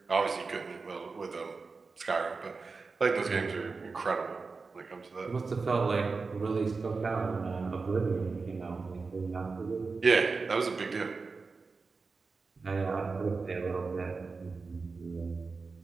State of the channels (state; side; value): quieter; left; 4.3 dB